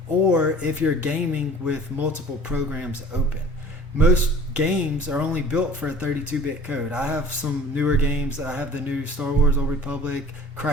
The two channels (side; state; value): both; normal; correlation 0.46